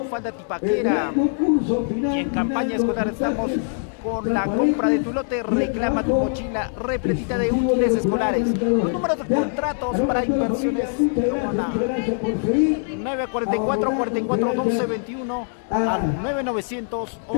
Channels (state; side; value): silent; right; 64 dB below the other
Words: falda tipaquera. Y en campaña escolar estamos con la compra de tu lote. Reclama tu mochila repletita de útiles escolares. Los números de contratos para Inversiones Caguana: 944 44 12 21 al 9900